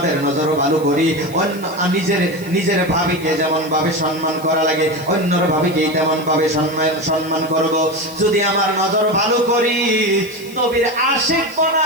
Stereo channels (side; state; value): left; noise; hiss, 19 dB below the sound